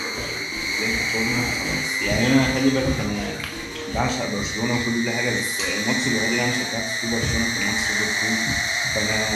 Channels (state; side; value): identical; both; correlation 1.00